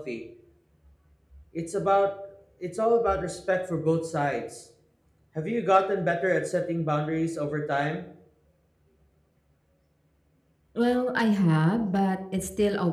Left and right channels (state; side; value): identical; both; correlation 1.00